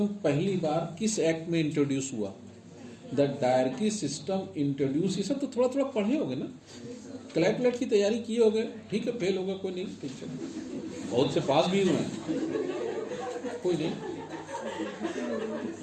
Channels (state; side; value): identical; both; correlation 1.00